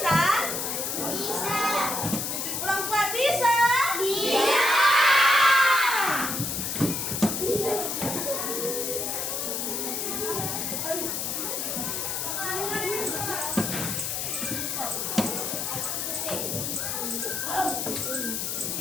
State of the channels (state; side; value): noise; left; hiss, 2 dB below the sound